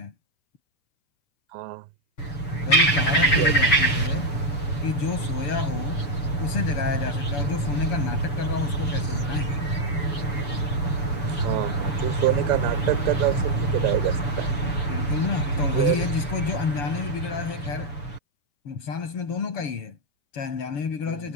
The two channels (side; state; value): right; late; 7.0 ms